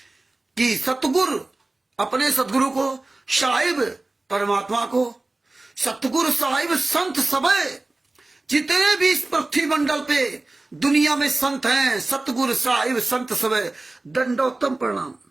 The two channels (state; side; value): quieter; left; 3.0 dB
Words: कि सतगुरु, अपने सतगुरु को, साहिब परमात्मा को, सतगुरु साहिब संत सबे, जितने भी इस पृथ्वी मंडल पे दुनिया में संत हैं, सतगुरु साहिब संत सबे दंडोतम प्रणाम।